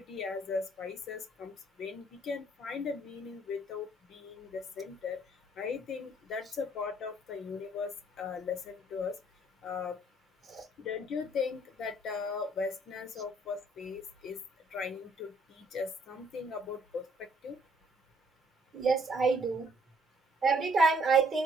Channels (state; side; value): normal; both; correlation 0.64